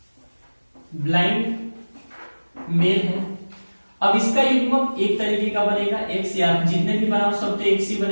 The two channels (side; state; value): both; inverted; correlation -1.00